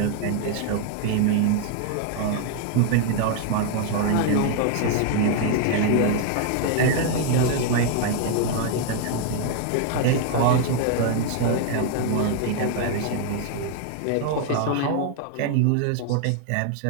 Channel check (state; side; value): different; both; correlation 0.00